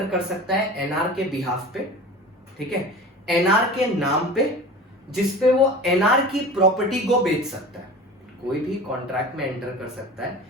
कर सकता है एनआर के बिहाफ पे। ठीक है? एनआर के नाम पे, जिसपे वो एनआर की प्रॉपर्टी को बेच सकता है। कोई भी कॉन्ट्रैक्ट में एंटर कर सकता है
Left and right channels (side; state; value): both; normal; correlation 0.36